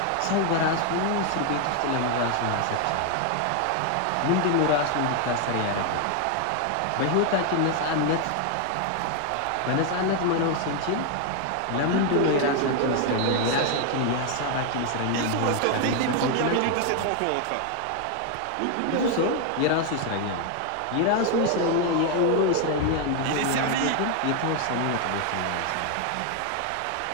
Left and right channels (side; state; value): both; different; correlation 0.01